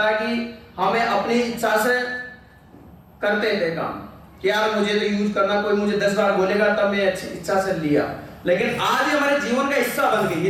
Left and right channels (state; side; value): identical; both; correlation 1.00